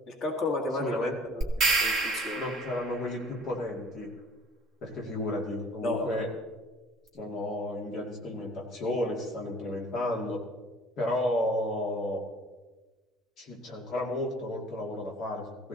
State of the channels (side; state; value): both; normal; correlation 0.51